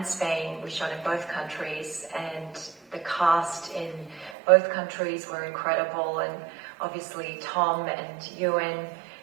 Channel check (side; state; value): left; drops out; at 4.4 s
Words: Spain, we shot in both countries, and the cast in both countries were incredible, and obviously Tom and Ewan,